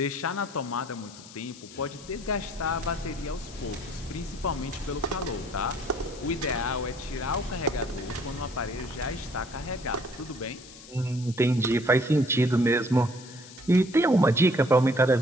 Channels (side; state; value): left; noise; hiss, 18 dB below the sound